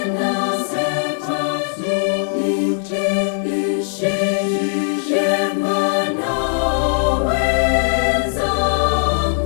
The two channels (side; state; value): right; silent; digital silence